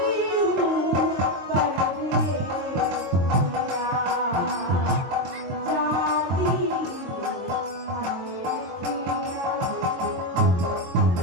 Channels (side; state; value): left; late; 23 ms